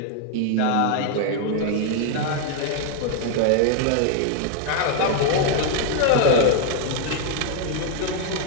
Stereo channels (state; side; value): different; both; correlation 0.00